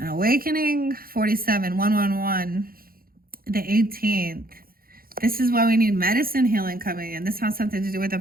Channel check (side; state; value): left; late; 0.42 ms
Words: awakening, 47, 111, the 18th. This is why we need medicine healing coming in. This has something to do with a